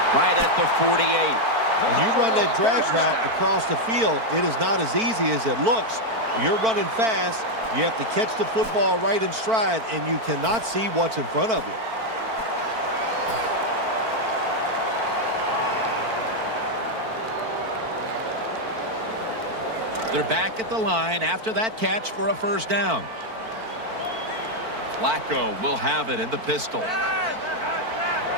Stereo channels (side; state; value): left; late; 4.5 ms